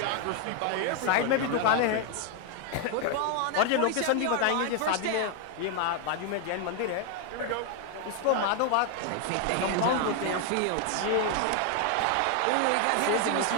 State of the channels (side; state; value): both; different; correlation 0.01